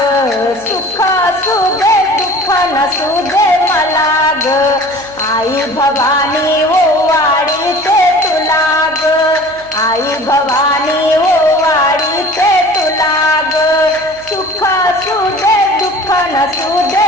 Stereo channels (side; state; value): right; noise; hum, 25 dB below the sound